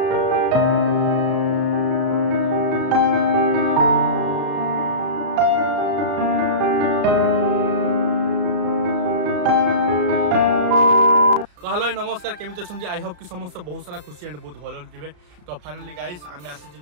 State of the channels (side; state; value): left; late; 34 ms